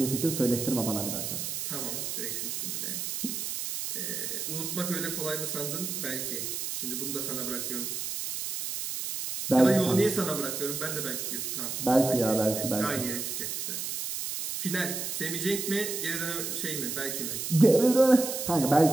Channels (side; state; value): right; noise; hiss, 4 dB below the sound